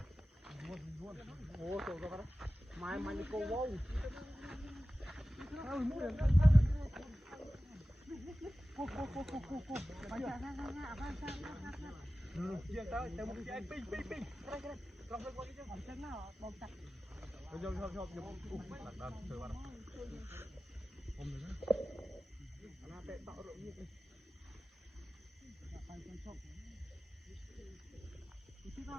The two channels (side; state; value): both; normal; correlation 0.96